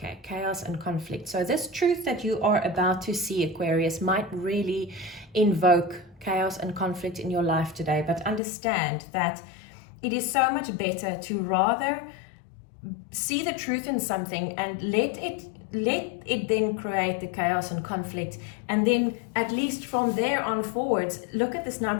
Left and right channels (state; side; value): drops out; right; at 8.4 s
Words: chaos and conflict. So this truth that you are about to see, Aquarius, might really invoke chaos and conflict in your life today. But understand that it is so much better to rather see the truth in something and let it then create the chaos and conflict. And then at least from there on forwards, look at this